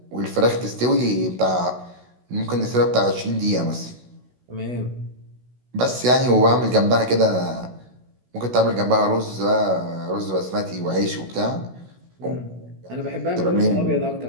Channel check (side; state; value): left; late; 16 ms